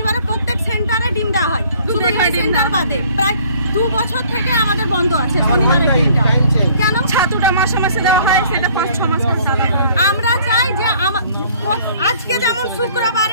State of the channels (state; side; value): inverted; both; correlation -0.57